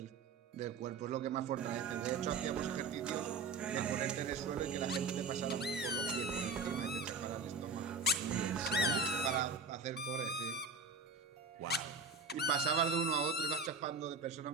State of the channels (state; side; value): quieter; left; 4.2 dB